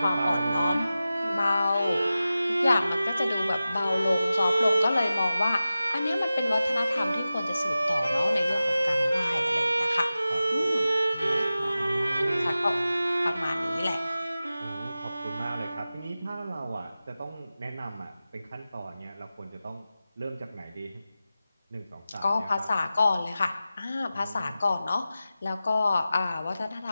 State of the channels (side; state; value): both; inverted; correlation -0.94